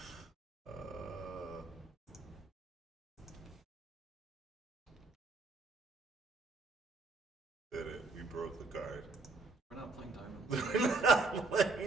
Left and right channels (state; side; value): quieter; left; 3.6 dB